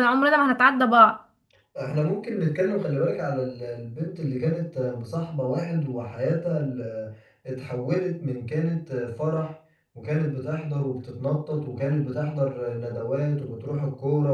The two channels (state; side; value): identical; both; correlation 1.00